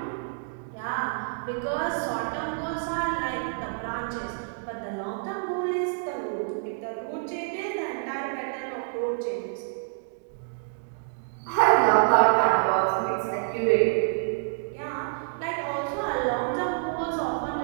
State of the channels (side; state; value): left; silent; digital silence